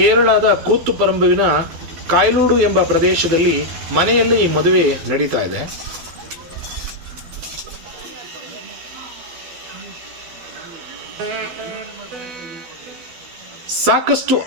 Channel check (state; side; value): late; left; 12 ms